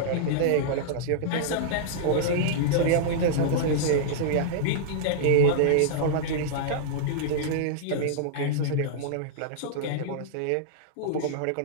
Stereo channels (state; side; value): different; both; correlation -0.02